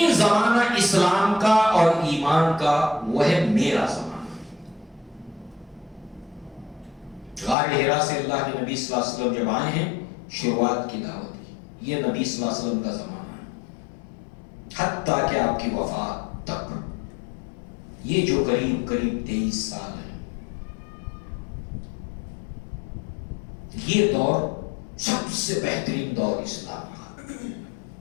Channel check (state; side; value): drops out; right; at 7.6 s